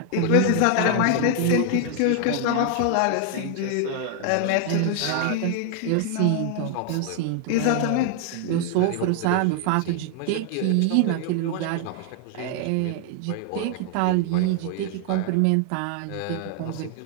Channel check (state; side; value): different; both; correlation 0.00